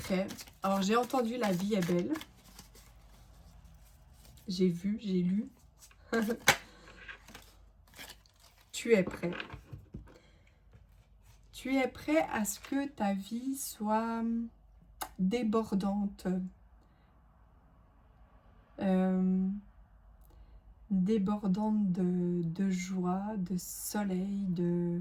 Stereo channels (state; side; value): identical; both; correlation 1.00